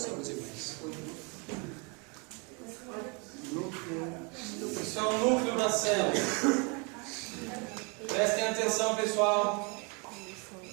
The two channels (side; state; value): left; quieter; 32.5 dB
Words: Isso é o núcleo da célula. Prestem atenção, pessoal.